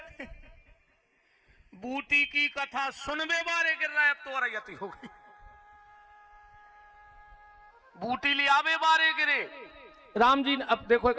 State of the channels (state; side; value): identical; both; correlation 1.00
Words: बूटी की कथा सुनवे बारे गिर रहा है। अब तो रैयती हो गई। बूटी लियावे बारे गिरे। राम जी ने, अब देखो